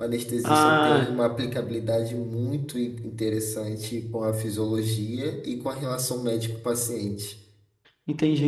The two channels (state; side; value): identical; both; correlation 1.00